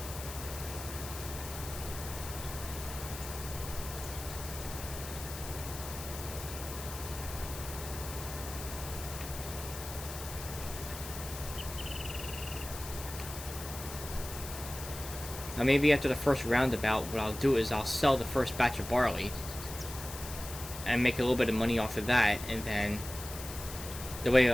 Now maybe after the first roundabout, what I'll do is I'll sell the first batch of barley and make a little bit of money off of that, and then the way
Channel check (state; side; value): noise; left; hiss, 10 dB below the sound